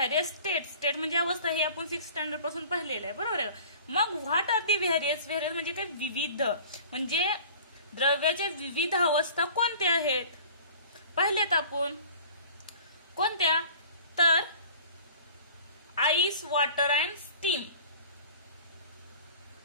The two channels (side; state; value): both; inverted; correlation -0.45